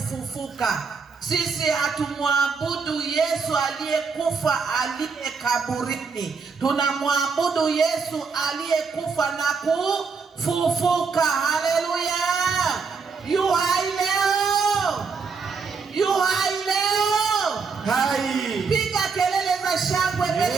Sisi hatumwabudu Yesu aliyekufa aliye kaburini, tunamwabudu Yesu aliyekufa na kufufuka. Haleluya! Yu hai leo, yu hai leo. Hai. Piga kelele za shangwe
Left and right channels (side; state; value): left; quieter; 5.1 dB